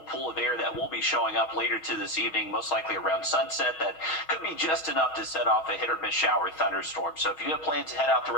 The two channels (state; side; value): late; right; 6.3 ms